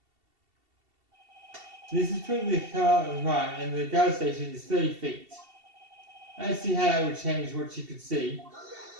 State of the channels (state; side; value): late; left; 2.7 ms